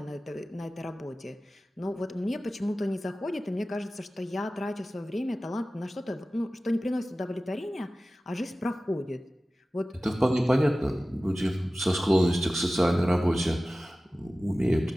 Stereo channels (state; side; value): normal; both; correlation 0.96